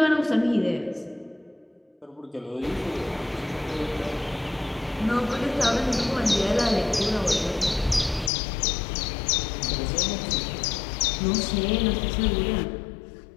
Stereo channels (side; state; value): right; drops out; at 8.3 s